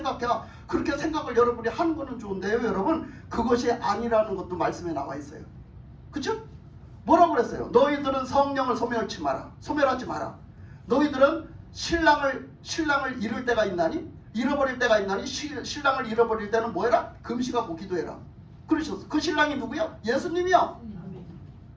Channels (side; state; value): both; identical; correlation 1.00